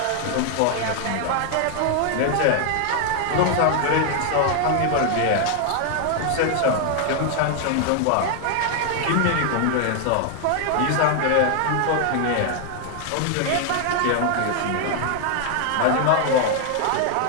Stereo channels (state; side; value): different; both; correlation 0.00